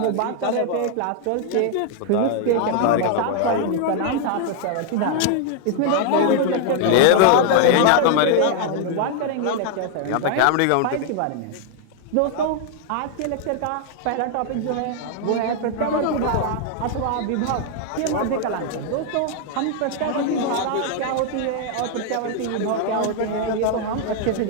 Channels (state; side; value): different; both; correlation 0.00